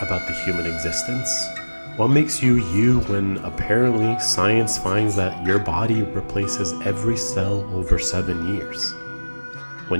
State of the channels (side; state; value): both; inverted; correlation -1.00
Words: the human existence. What makes you you when apparently science finds that your body replaces every cell over 7 years?